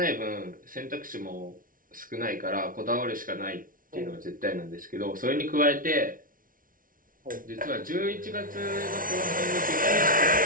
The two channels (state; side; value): late; left; 0.40 ms